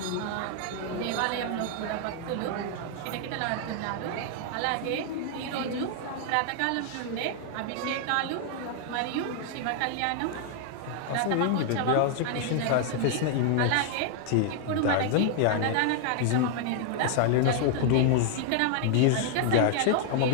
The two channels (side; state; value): both; different; correlation 0.00